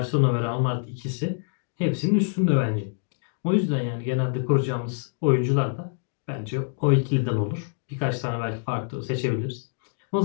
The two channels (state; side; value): silent; right; digital silence